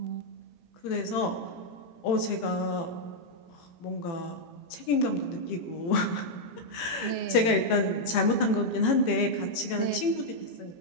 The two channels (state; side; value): late; right; 18 ms